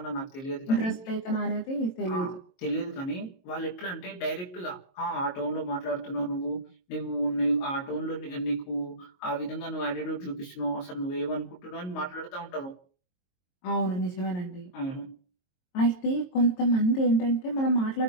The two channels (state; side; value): late; right; 22 ms